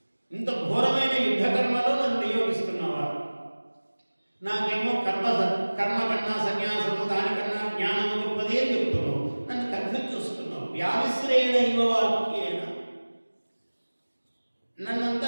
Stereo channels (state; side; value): inverted; both; correlation -1.00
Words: ఇంత ఘోరమైన యుద్ధ కర్మలో నన్ను నియోగిస్తున్నావా? నాకేమో కర్మ కన్నా సన్యాసము, దానికన్నా జ్ఞానము గొప్పది అని చెప్తున్నావు. నన్ను కన్ఫ్యూజ్ చేస్తున్నావు. వ్యామిశ్రేణ ఇవ వాక్యేన,